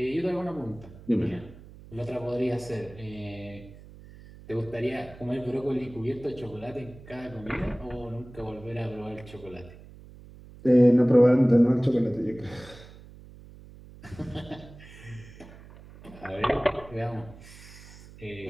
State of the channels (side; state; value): right; noise; hum, 19 dB below the sound